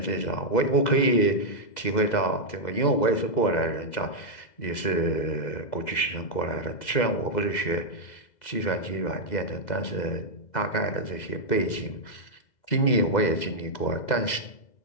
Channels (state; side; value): late; right; 2.0 ms